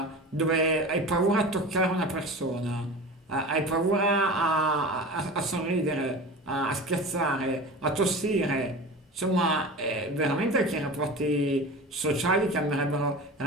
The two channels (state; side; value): normal; both; correlation 0.33